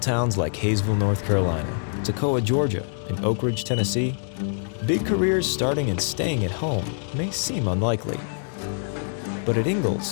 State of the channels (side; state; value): right; silent; digital silence